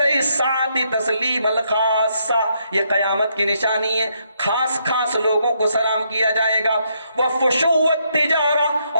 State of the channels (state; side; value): inverted; both; correlation -0.75